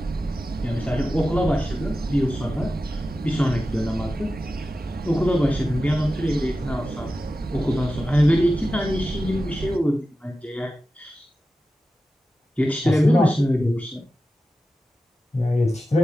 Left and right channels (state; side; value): normal; both; correlation 0.93